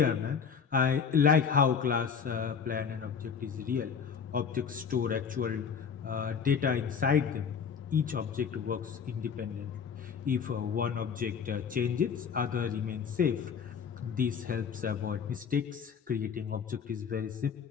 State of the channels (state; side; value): quieter; right; 6.6 dB